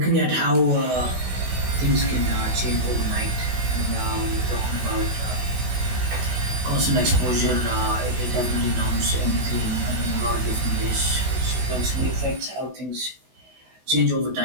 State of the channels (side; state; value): left; late; 16 ms